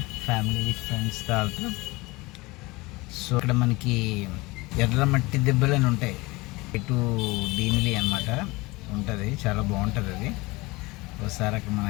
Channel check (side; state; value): right; quieter; 22.8 dB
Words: ఫ్యామిలీ ఫ్రెండ్స్తో వెళ్తాం. సో ఇక్కడ మనకి ఎర్ర మట్టి దెబ్బలు అని ఉంటాయి. ఇటు భీమిలీ అనమాట ఉంటుంది, చాలా బాగుంటుంది అది. ఒకసారి అక్కడ